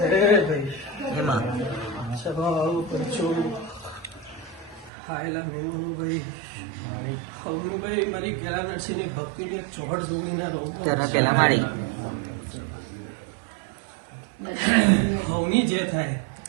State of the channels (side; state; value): left; drops out; at 4.9 s